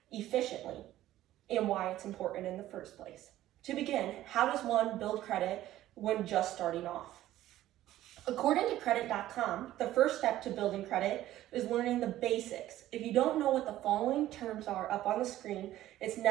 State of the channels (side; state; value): left; quieter; 14.1 dB